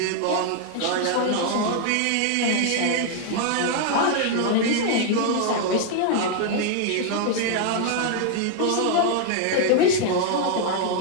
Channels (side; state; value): both; different; correlation 0.00